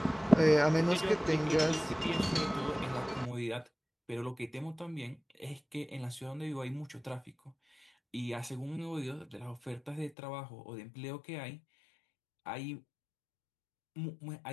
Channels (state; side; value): drops out; right; at 10.1 s